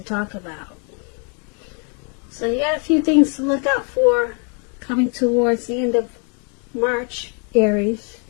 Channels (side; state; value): right; quieter; 38.1 dB